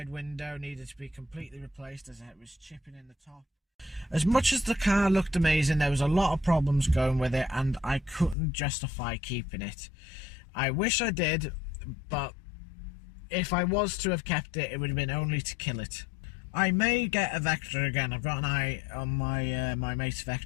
window needed to be completely replaced as it was chipping in the top. As much as the car looked amazing, there was a lot of problems going with it, and I couldn't justify keeping it. I wish I did, but if I was to have kept it, it would have been only to kill it. I may get a Vectra again. I've got an eye on my my mate's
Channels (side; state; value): right; drops out; at 8.3 s